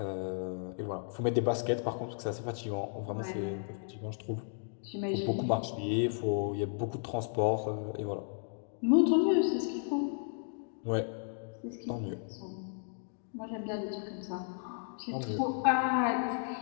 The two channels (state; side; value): silent; right; digital silence